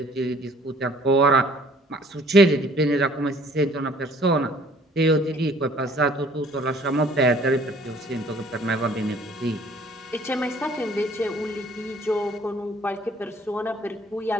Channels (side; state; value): both; normal; correlation 0.56